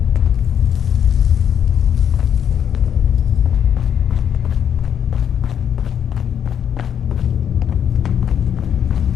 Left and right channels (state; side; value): quieter; right; 8.7 dB